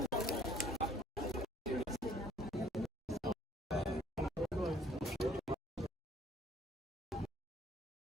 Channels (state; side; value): normal; both; correlation 0.61